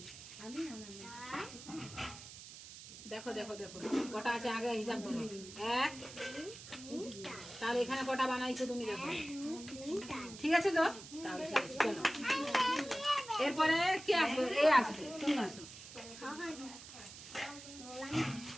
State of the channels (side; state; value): right; noise; hiss, 14 dB below the sound